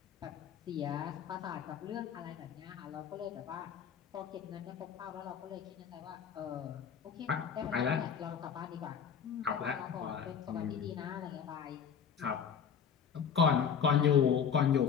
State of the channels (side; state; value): right; quieter; 7.4 dB